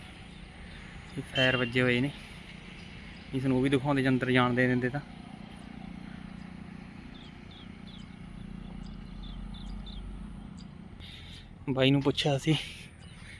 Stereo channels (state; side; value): identical; both; correlation 1.00